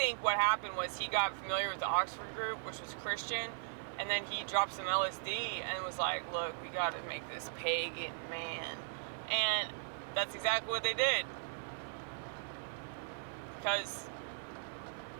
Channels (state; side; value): silent; left; digital silence